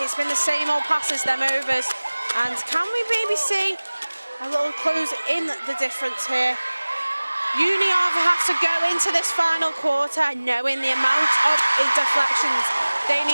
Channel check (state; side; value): inverted; both; correlation -1.00